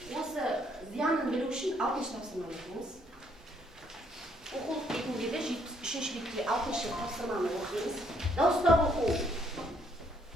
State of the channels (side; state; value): both; normal; correlation 0.68